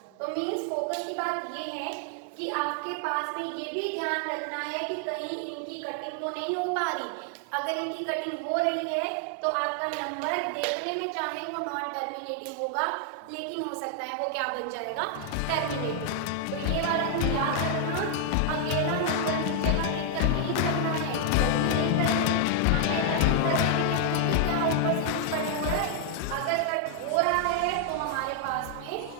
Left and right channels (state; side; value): different; both; correlation 0.00